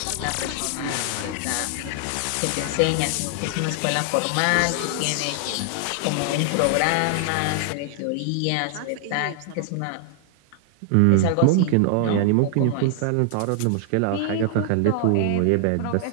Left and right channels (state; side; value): different; both; correlation 0.00